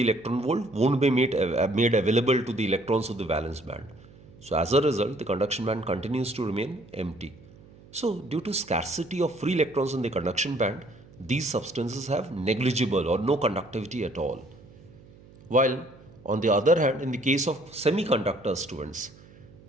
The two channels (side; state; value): right; noise; hum, 23 dB below the sound